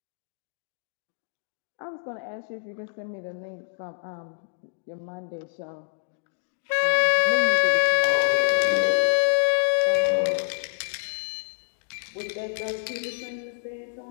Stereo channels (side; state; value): right; silent; digital silence